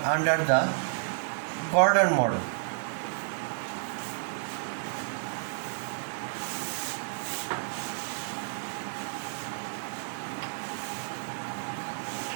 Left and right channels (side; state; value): left; silent; 57 dB below the other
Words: under the Gordon model.